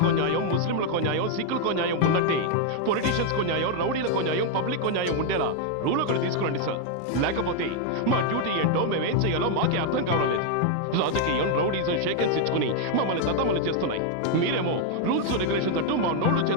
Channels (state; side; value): different; both; correlation 0.00